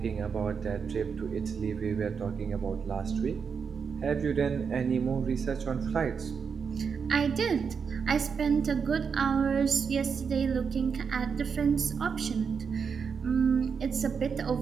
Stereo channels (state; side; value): quieter; left; 6.1 dB